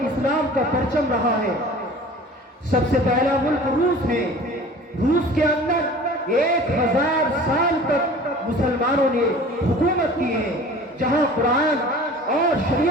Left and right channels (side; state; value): both; normal; correlation 0.43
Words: اسلام کا پرچم رہا ہے۔ سب سے پہلا ملک روس ہے۔ روس کے اندر 1000 سال تک مسلمانوں نے حکومت کی ہے، جہاں قرآن اور